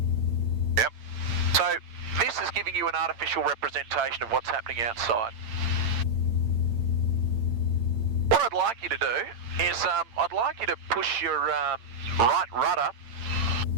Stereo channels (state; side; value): late; left; 8.8 ms